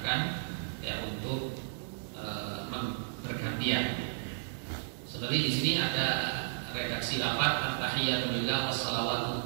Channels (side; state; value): left; silent; 56 dB below the other